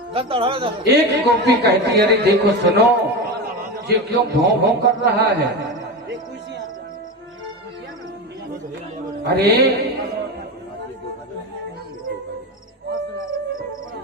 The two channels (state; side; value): normal; both; correlation 0.21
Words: एक गोपी कहती, अरे देखो सुनो, ये क्यों भौं भौं कर रहा है? अरे